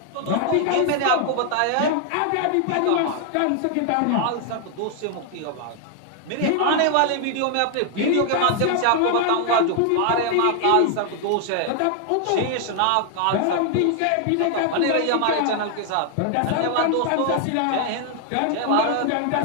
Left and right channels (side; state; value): both; different; correlation 0.00